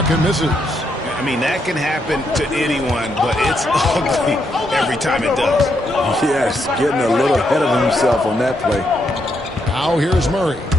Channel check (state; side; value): normal; both; correlation 0.78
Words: misses. I mean, that can happen to anyone, but it's ugly every time it does. Yes, getting a little ahead of himself on that play. Now here's Murray.